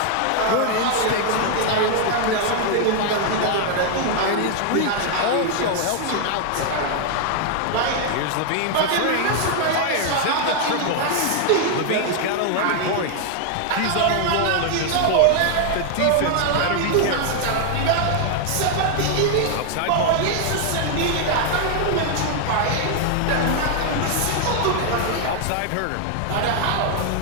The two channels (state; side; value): different; both; correlation 0.00